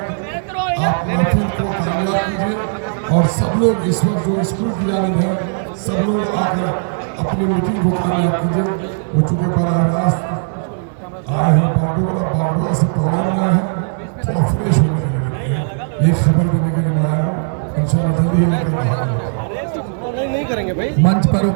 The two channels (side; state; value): left; silent; digital silence